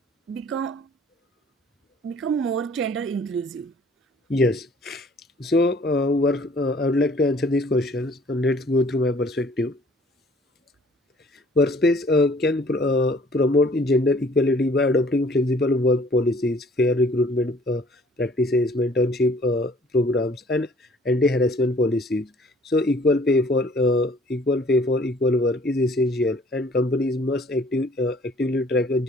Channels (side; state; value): both; normal; correlation 0.56